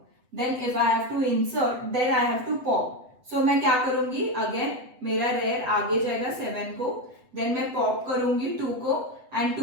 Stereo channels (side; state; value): left; late; 8.0 ms